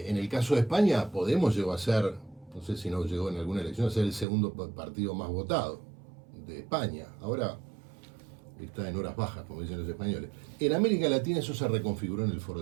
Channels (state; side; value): drops out; left; at 4.2 s